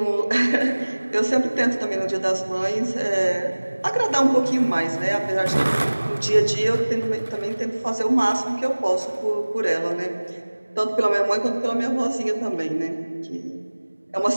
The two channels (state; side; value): inverted; both; correlation -1.00